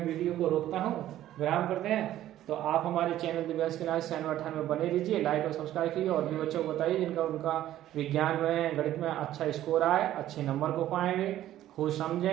वीडियो को रोकता हूं, विराम करते हैं। तो आप हमारे चैनल दिव्यांश के नाम 98 में बने रहिए, लाइक और सब्सक्राइब कीजिए और भी बच्चों को बताइए जिनका उनका विज्ञान में गणित में अच्छा स्कोर आए, अच्छे नंबर को पाएंगे, खुद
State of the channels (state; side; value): quieter; left; 13.1 dB